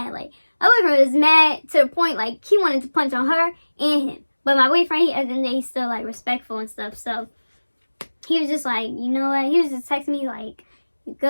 Like, my boyfriend was mad to the point, like, he wanted to punch on her and him. But my boyfriend, at the end of the day, he's still, like, respectful and stuff. So, he was just like, you know what? He was just texting me, like,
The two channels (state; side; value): inverted; both; correlation -1.00